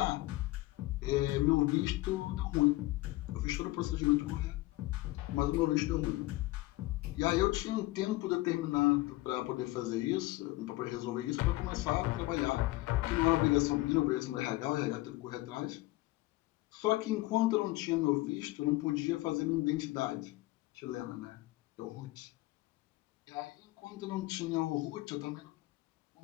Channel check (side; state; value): right; quieter; 19.3 dB